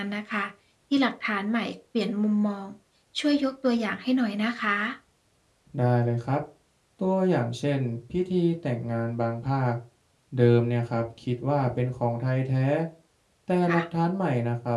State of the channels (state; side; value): identical; both; correlation 1.00